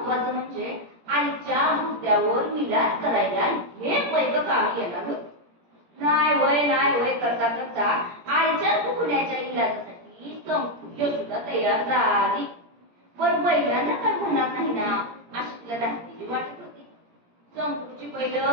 म्हणजे आईच्या मुद्द्यावर विलास करायला हे पैक कामी येणार होत. नाही वय करता करता आईच्या दुखण्याच्या इलाजासाठी संपूर्ण सुद्धा तयार झाली. पण बैलांना काय म्हणणार नाही ना अशी तिला धास्तीची वाटत होती. संपूची बैल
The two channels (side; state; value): left; late; 17 ms